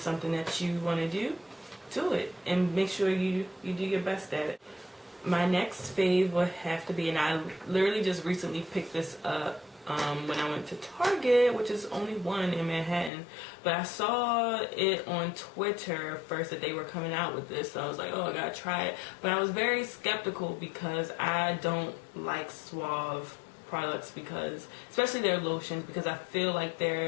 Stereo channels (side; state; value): right; drops out; at 13.1 s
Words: something that you want to do it, and make sure you do your best at it. My next fave would have to be, and I literally just recently picked this up when I went to Target, which is only one in Manhattan, but I saw it on Twitter first that they were coming out with this, so I was like, oh, I gotta try it. But I was very skeptical because I don't like Suave products, because especially their lotions, because I feel like